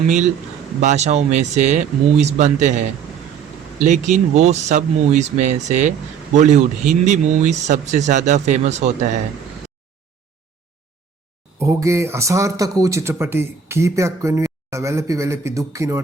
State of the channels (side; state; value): left; quieter; 7.1 dB